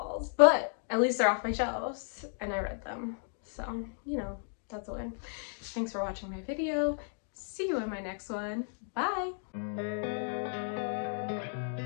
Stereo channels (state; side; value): silent; right; 55 dB below the other